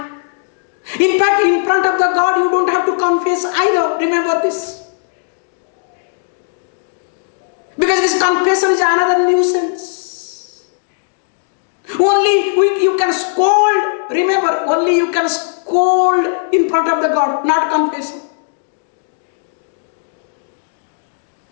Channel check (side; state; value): right; silent; digital silence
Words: in fact, in front of the God, you don't have to confess either. Remember this. Because this confession is another nuisance. Only you can scold. Remember, only you can scold in front of the God, not confess.